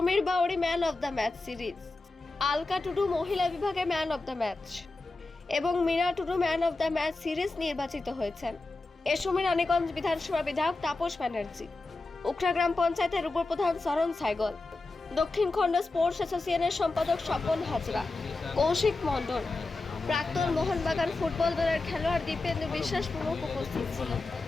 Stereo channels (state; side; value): quieter; right; 3.3 dB